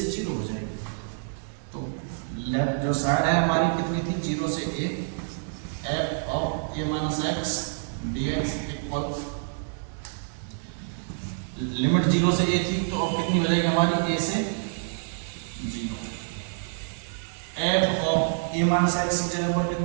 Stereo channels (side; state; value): left; silent; digital silence